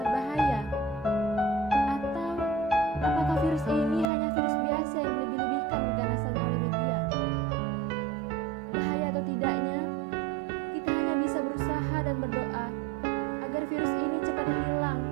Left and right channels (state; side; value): drops out; left; at 4.0 s